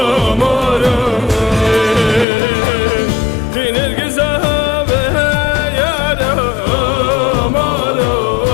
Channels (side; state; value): right; drops out; at 2.2 s